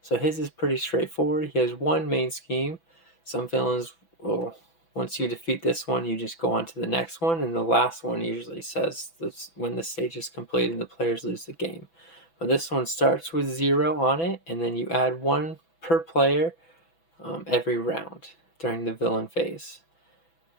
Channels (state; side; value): late; right; 6.0 ms